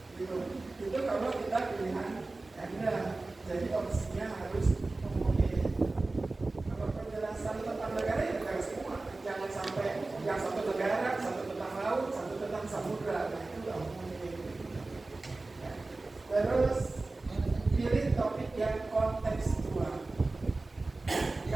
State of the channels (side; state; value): left; quieter; 3.3 dB